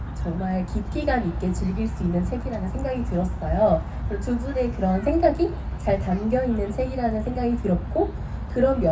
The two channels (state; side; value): identical; both; correlation 1.00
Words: 정말 깊이감 있게 즐길 수 있는 책이라는 생각이 들었어요. 그리고 두 분의 그런 생각이 잘 담겨 있는 책이라는 생각이 들었고 그런